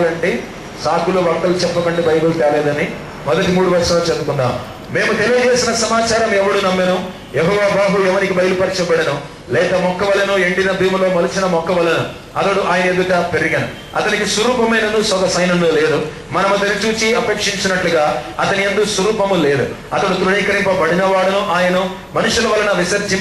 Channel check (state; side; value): identical; both; correlation 1.00